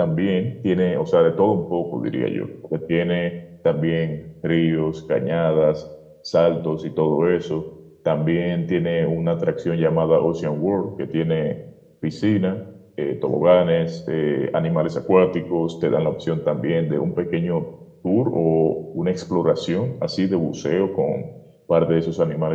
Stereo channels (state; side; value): identical; both; correlation 1.00